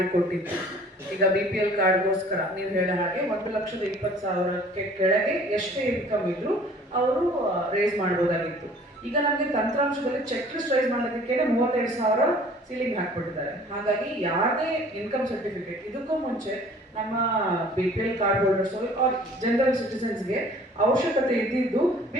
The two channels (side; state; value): both; normal; correlation 0.51